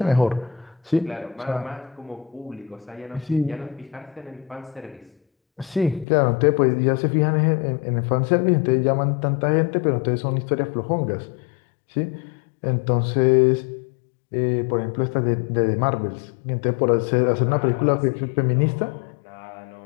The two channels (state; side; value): drops out; right; at 6.1 s